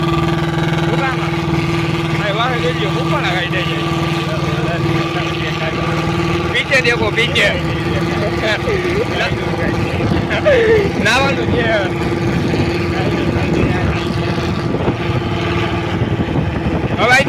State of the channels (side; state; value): both; identical; correlation 1.00